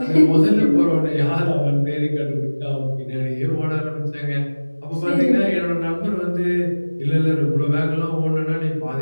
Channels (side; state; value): both; inverted; correlation -1.00